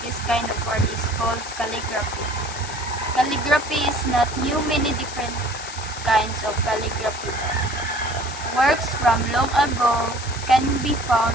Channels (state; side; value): noise; left; hiss, 11 dB below the sound